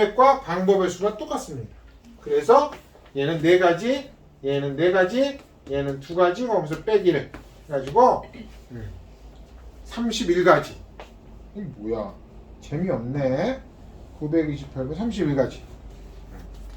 방법의 수가 똑같습니다. 그래서 얘는 4가지, 얘는 4가지, 얘는 2가지, 거기서 빼기를 해가지고 31가지. 이 뭐야? 재미없네. 928번 31가지.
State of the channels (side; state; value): both; identical; correlation 1.00